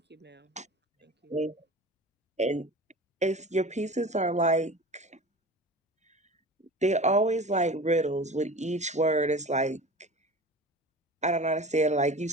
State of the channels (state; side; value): normal; both; correlation 0.36